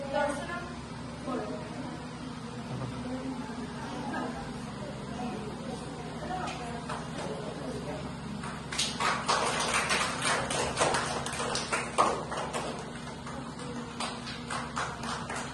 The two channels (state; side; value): identical; both; correlation 1.00